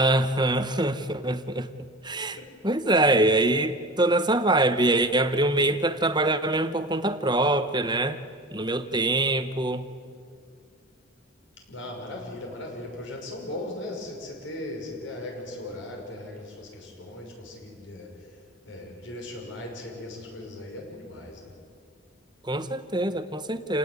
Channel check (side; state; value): both; normal; correlation 0.35